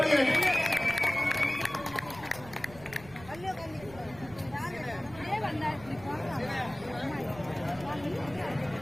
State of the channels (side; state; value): right; noise; rumble, 18 dB below the sound